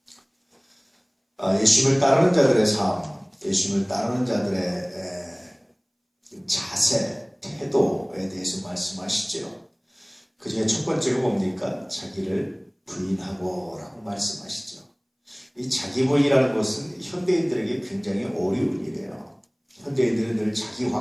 예수님을 따르는 자들의 삶, 예수님을 따르는 자들의 자세, 태도에 대해서 말씀하시죠. 그 중에 첫 번째가 뭡니까? 자기를 부인하고 라고 말씀하시죠. 이 자기 부인이라는 것은 현대인들에게 굉장히 어려운 일이에요. 현대인들은 늘 자기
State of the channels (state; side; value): identical; both; correlation 1.00